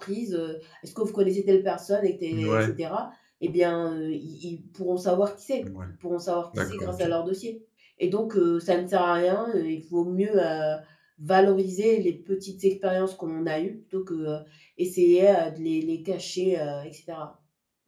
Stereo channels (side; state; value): both; identical; correlation 1.00